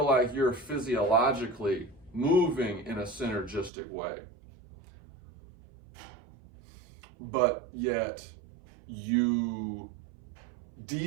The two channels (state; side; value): drops out; left; at 3.7 s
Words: like you're physiologically moving in a synergistic way, but yet you